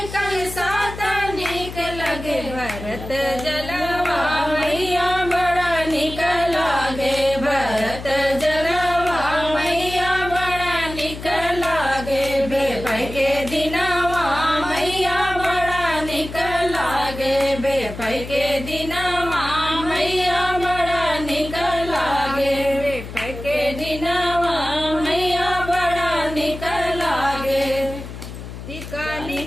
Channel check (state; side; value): noise; left; hum, 11 dB below the sound